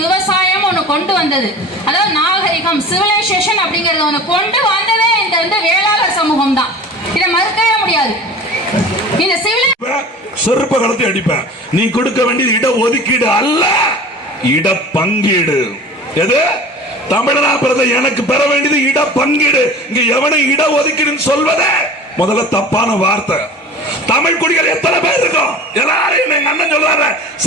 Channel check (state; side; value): normal; both; correlation 0.39